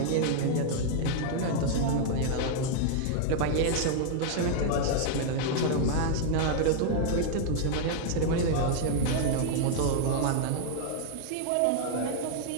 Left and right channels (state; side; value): different; both; correlation -0.01